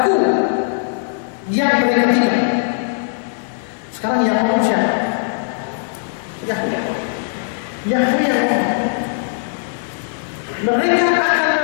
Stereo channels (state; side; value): silent; right; digital silence